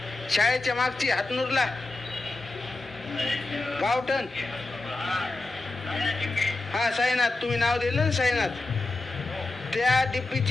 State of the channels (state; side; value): quieter; right; 3.1 dB